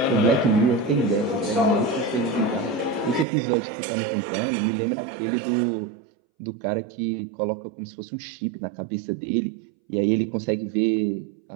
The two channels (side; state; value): left; drops out; at 3.2 s